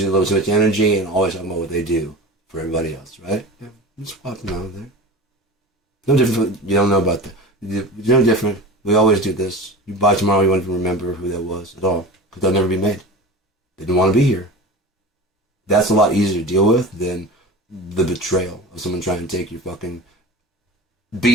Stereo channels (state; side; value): normal; both; correlation 0.33